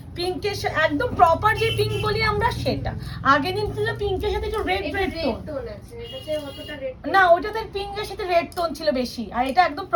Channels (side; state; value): both; identical; correlation 1.00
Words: পিঙ্কের একদম প্রপার যে পিঙ্ক বলি আমরা সেটা। আগের দিন ছিল পিঙ্কের সাথে একটু রেড টোন আছে, এটাতে অতটা রেড না, ওইটাতে পিঙ্কের সাথে রেড টোন ছিল বেশি, আর এটা একদম